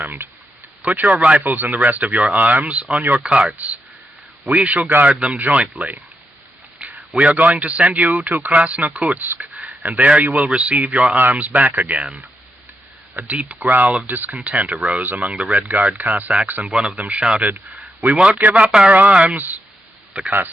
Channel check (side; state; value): both; normal; correlation 0.84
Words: Put your rifles and the rest of your arms on your carts. We shall guard them jointly. We are going to send you to Krasnokutsk, and there you will receive your arms back again. A deep growl of discontent arose among the Red Guard Cossacks, and one of them shouted, "We won't give up our arms!" The